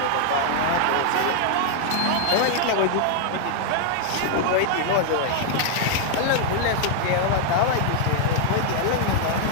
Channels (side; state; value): both; different; correlation 0.00